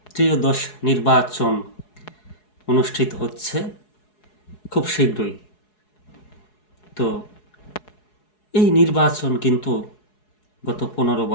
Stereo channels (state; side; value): late; right; 4.7 ms